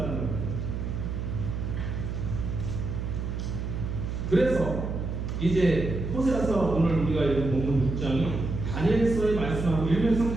거예요. 그래서 이제 호세아서 오늘 우리가 읽은 본문 6장이 다니엘서의 말씀하고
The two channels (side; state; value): right; noise; hum, 4 dB below the sound